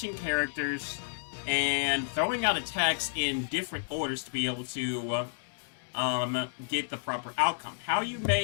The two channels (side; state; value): right; silent; digital silence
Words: characters and throwing out attacks in different orders to be able to get the proper outcome. How you